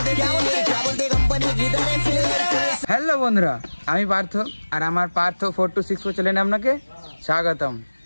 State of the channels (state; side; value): inverted; both; correlation -1.00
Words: হ্যালো বন্ধুরা, আমি পার্থ আর আমার পার্থ 426 চ্যানেলে আপনাকে স্বাগতম।